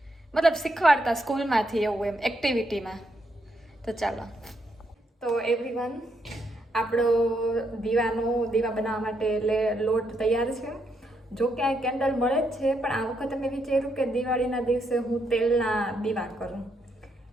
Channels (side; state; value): both; normal; correlation 0.78